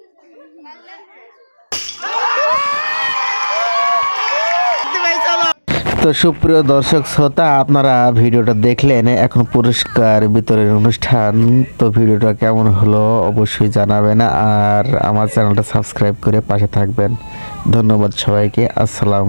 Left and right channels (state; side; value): inverted; both; correlation -1.00